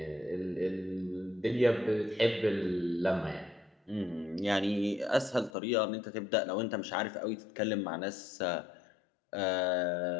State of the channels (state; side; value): drops out; right; at 5.5 s